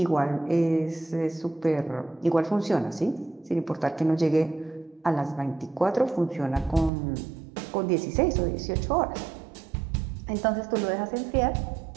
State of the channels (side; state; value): left; drops out; at 6.9 s